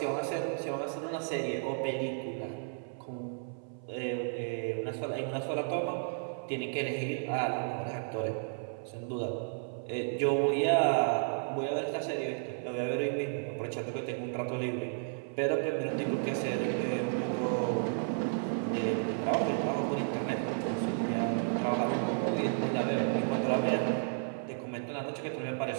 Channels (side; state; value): left; silent; 56 dB below the other